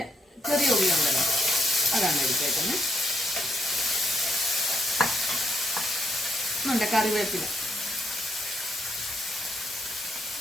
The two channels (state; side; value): normal; both; correlation 0.77